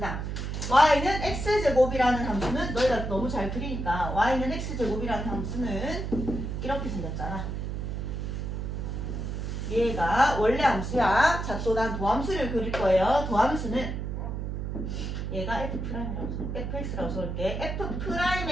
다음 y는 x제곱이라는 함수는 너희가 너무 잘 그리니까 y는 x제곱이라는 함수는 이렇게 생겼잖아. 얘가 원래 함수야. 자, 또 난 도함수를 그릴 거예요. 도함수는 얘가 fx라고 써볼게.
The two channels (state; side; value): noise; right; hum, 4 dB below the sound